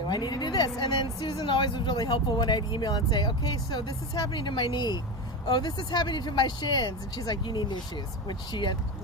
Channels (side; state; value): both; normal; correlation 0.20